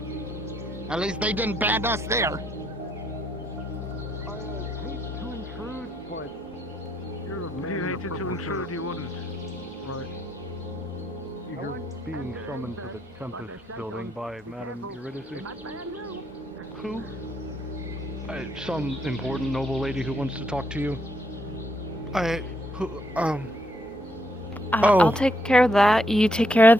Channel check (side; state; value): both; normal; correlation 0.74